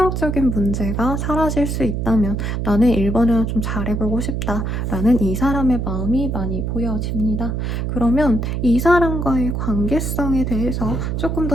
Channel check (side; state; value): right; noise; hum, 1 dB below the sound